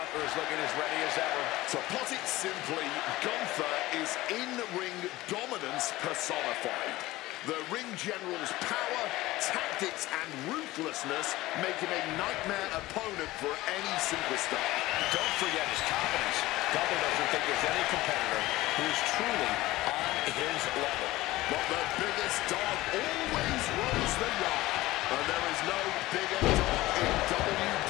is looking as ready as ever. To put it simply, Gunther is in-ring dominance personified. The ring general's power, tactics, and ruthlessness make him a nightmare opponent for any superstar. Don't forget his confidence. Gunther doesn't think there's any competitor who is truly on his level. But the biggest dog always runs the yard. And there is no bigger dog in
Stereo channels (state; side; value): quieter; right; 18.0 dB